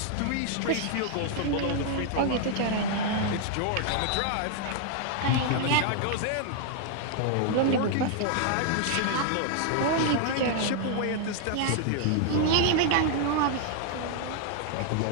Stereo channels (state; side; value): different; both; correlation 0.00